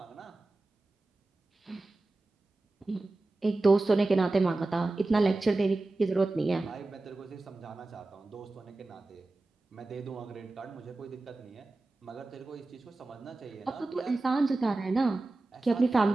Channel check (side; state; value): left; quieter; 3.1 dB